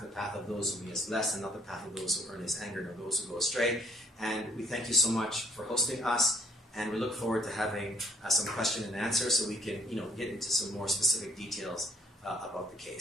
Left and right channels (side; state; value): both; normal; correlation 0.63